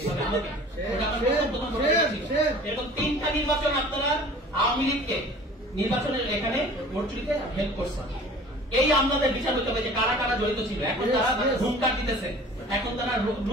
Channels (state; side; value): normal; both; correlation 0.45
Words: এরকম 3টা নির্বাচন আপনারা আওয়ামী লীগকে নির্বাচনের এখানে ভোট চুরিতে হেল্প করছেন। এই আমলাদের বিচার হতে হবে যে কারা কারা জড়িত ছিল। এখন তারা হুঙ্কার দিতেছে, এখন তারা